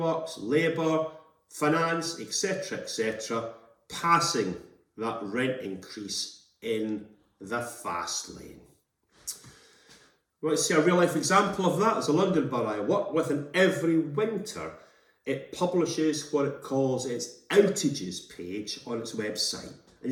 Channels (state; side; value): identical; both; correlation 1.00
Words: labour, finance, etc., passing that rent increase in the fast lane. You want to see a real life example of that? There's a London borough I work with, and every winter it publishes what it calls its outages page on its website. And